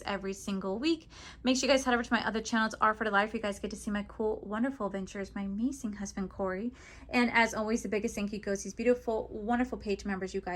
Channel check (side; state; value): both; identical; correlation 1.00